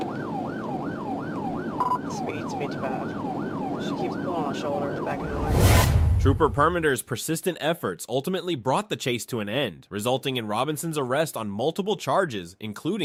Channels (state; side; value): identical; both; correlation 1.00